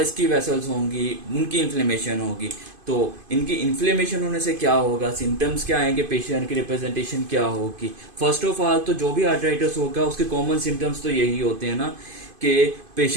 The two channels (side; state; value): left; late; 2.5 ms